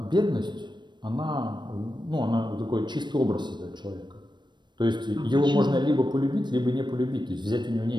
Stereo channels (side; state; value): left; late; 0.22 ms